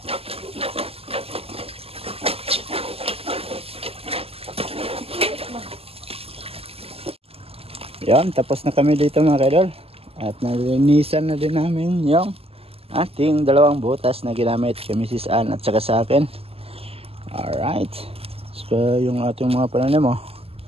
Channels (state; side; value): late; left; 0.29 ms